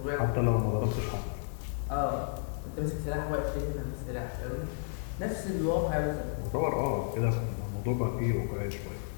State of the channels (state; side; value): silent; right; 56 dB below the other